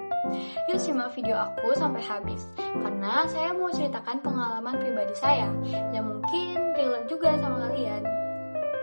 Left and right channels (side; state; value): both; inverted; correlation -1.00